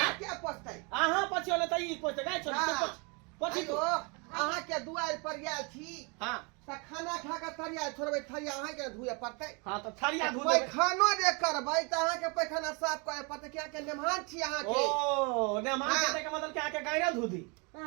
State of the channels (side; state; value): left; quieter; 31.9 dB